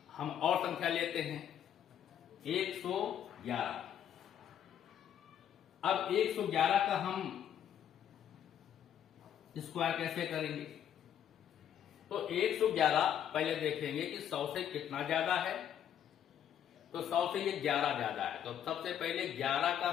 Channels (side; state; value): right; quieter; 9.7 dB